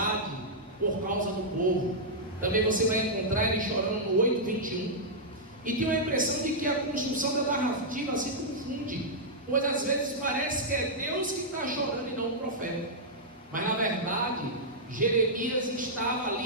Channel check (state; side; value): normal; both; correlation -0.08